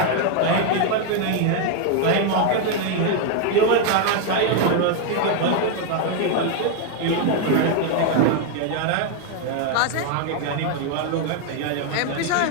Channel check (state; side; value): different; both; correlation 0.01